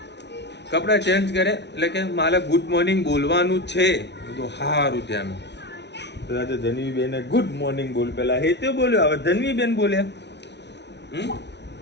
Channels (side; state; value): right; late; 0.50 ms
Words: કપડાં ચેન્જ કરે એટલે કે મારે ગુડ મોર્નિંગ બોલવાનું છે. તો સારું ત્યાં તો ધનવીબેન ગુડ મોર્નિંગ બોલ, પેલા હે તે બોલ્યો, હવે ધનવીબેન બોલ્યા.